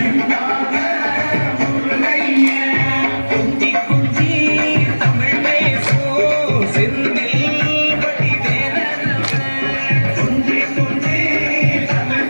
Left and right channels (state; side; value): inverted; both; correlation -1.00